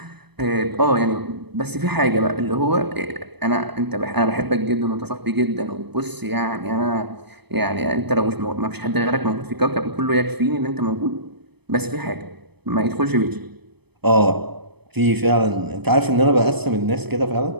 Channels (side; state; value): left; late; 0.98 ms